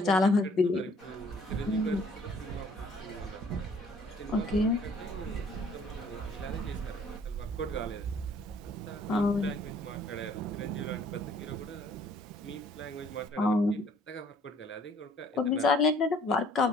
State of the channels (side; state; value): both; normal; correlation 0.58